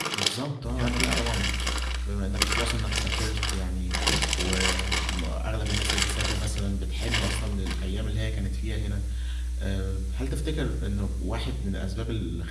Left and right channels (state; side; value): identical; both; correlation 1.00